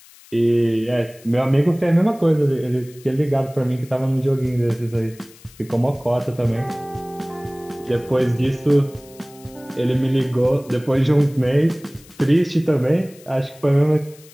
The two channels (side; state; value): left; noise; hiss, 24 dB below the sound